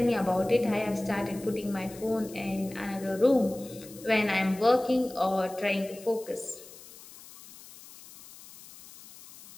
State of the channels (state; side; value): noise; left; hiss, 19 dB below the sound